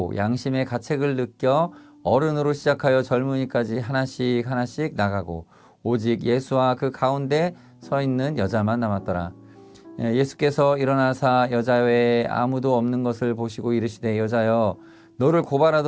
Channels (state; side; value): identical; both; correlation 1.00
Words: 양심의 가책을 느껴 어른으로 시작하여 젊은이까지 하나씩 나가고 오직 예수와 그 가운데 서 있는 여자만 남았더라. 예수께서 일어나사 여자 외에 아무도 없는 것을 보시고 이르시되 여자여 너를